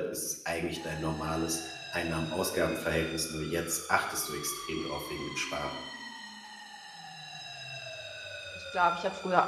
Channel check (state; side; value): identical; both; correlation 1.00